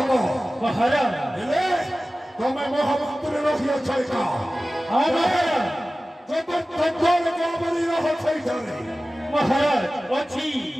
ମହାରାଜ ହେଲେ ତମେ ମହାମନ୍ତ୍ରୀ ରହିଅଛ ଏକା। ମହାରାଜ ଚତୁର୍ଥ ଦ୍ୱାରକୁ ଆମରି ରହ ସେଇଠାରେ। ମହାରାଜ ଅଛି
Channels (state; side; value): normal; both; correlation 0.96